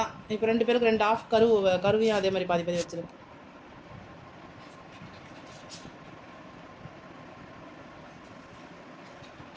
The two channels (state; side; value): identical; both; correlation 1.00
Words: இப்போ 2 பேருக்கு 2 ஆஃப் கருவையும் அதே மாதிரி பாதி வச்சிரு.